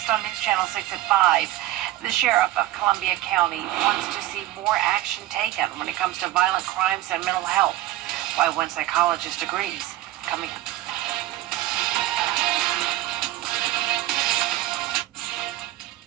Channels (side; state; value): left; quieter; 15.7 dB